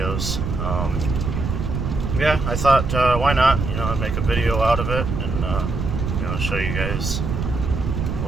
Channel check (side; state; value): right; noise; rumble, 3 dB below the sound